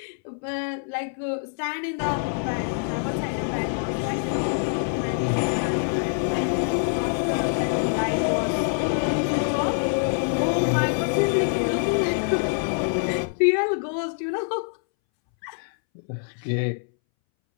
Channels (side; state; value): right; silent; 62 dB below the other